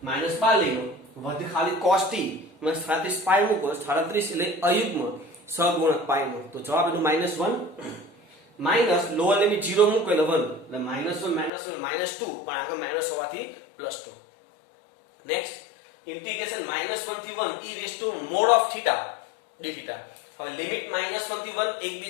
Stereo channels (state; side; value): drops out; right; at 11.5 s